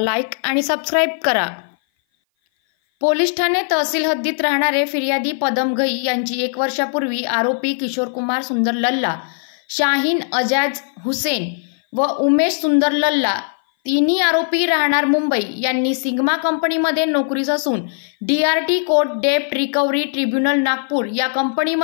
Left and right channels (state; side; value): silent; right; 58 dB below the other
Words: आणि सबस्क्राईब करा। पोलीस ठाणे तहसील हद्दीत राहणारे फिर्यादी पदम घई यांची 1 वर्षापूर्वी आरोपी किशोर कुमार सुंदर लल्ला, शाहीन अजाज हुसेन व उमेश सुंदर लल्ला तिन्ही आरोपी राहणार मुंबई यांनी सिग्मा कंपनीमध्ये नोकरीस असून DRT कोर्ट डेप्ट रिकव्हरी ट्रिब्युनल नागपूर या